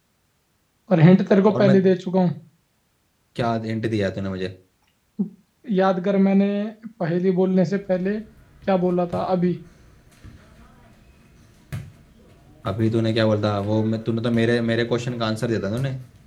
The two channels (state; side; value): identical; both; correlation 1.00